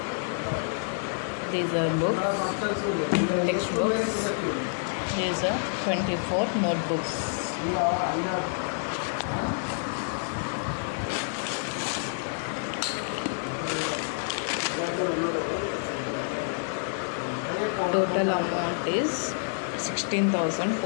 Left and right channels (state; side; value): silent; right; 59 dB below the other